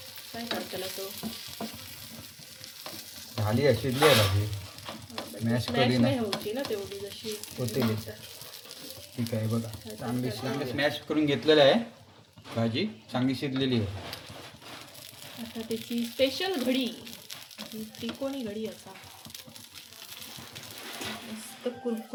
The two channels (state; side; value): identical; both; correlation 1.00